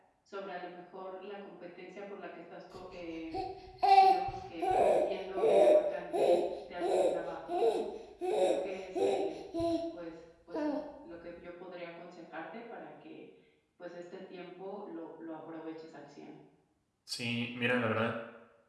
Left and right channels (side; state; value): both; identical; correlation 1.00